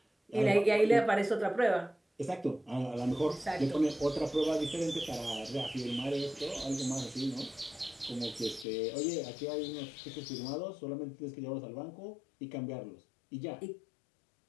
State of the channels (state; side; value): drops out; right; at 8.7 s